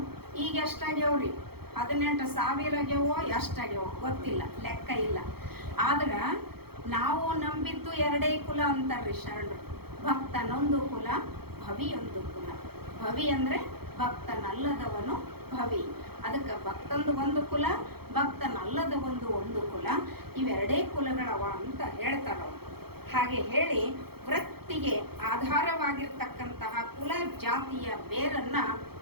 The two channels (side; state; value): left; late; 0.96 ms